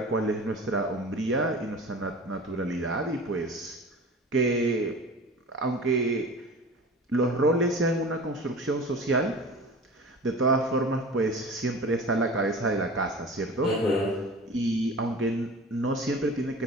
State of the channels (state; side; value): normal; both; correlation 0.37